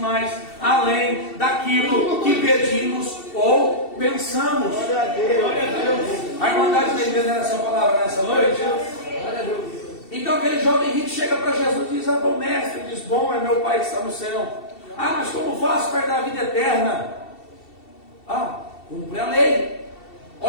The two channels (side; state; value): right; late; 2.7 ms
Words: além daquilo que pedimos ou pensamos. Glória a Deus. A Irmandade está entendendo essa palavra nessa noite? Glória a Deus. Então aquele jovem rico chega para Jesus e diz: ah, bom mestre, diz: bom é meu Pai que está no céu. Ah, mas como faço para dar a vida eterna? Ah, cumpre a lei.